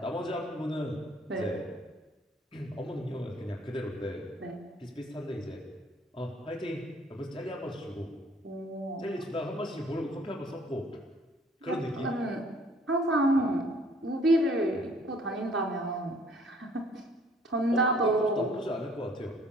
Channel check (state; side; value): normal; both; correlation 0.58